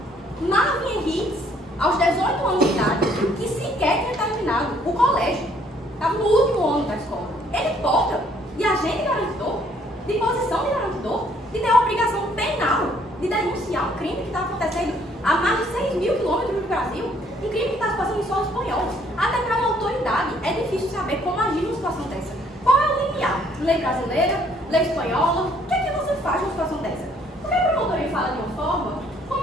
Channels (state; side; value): normal; both; correlation 0.63